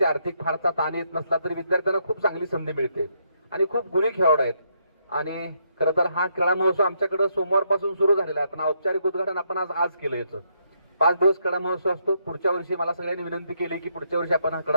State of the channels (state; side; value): inverted; both; correlation -0.76